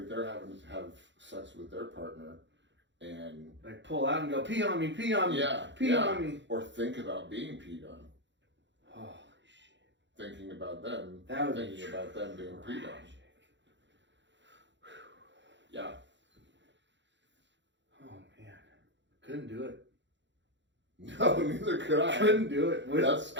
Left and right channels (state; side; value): late; left; 0.53 ms